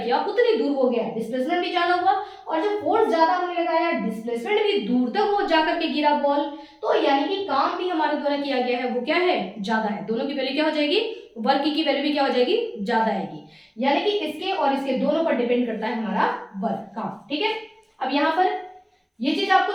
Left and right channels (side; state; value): both; identical; correlation 1.00